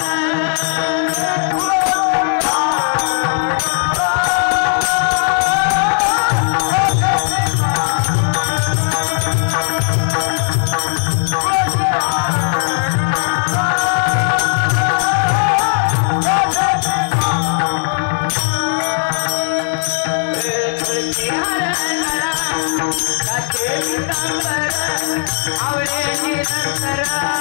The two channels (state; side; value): silent; right; 65 dB below the other